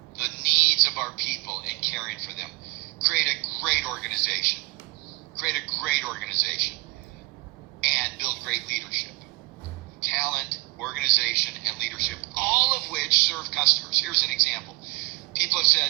the needs of our people and caring for them. Create a great organization. And build great leadership. Talent, organization, and leadership, all of which serve customers. Here's an example.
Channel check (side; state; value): left; quieter; 24.6 dB